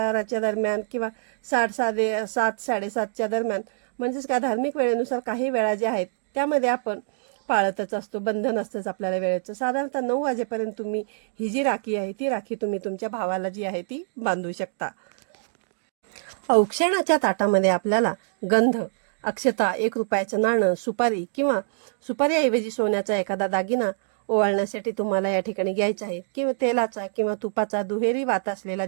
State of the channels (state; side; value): silent; left; digital silence